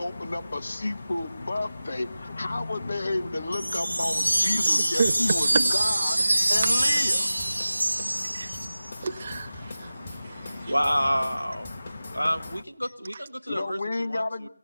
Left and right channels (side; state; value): both; inverted; correlation -0.97